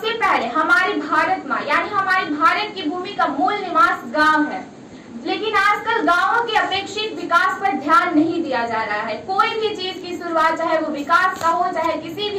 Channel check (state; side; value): identical; both; correlation 1.00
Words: पहले हमारी भारत माँ यानी हमारी भारत की भूमि का मूल निवास गांव है, लेकिन आजकल गांवों के अपेक्षित विकास पर ध्यान नहीं दिया जा रहा है। कोई भी चीज की शुरुआत, चाहे वो विकास का हो, चाहे किसी